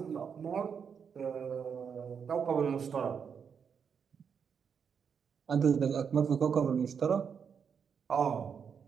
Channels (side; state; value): left; quieter; 6.8 dB